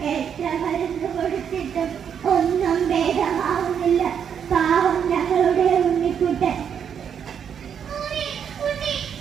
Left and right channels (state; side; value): quieter; left; 7.9 dB